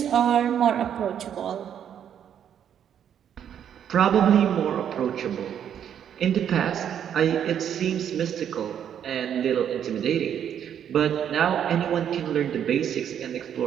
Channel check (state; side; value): quieter; left; 9.2 dB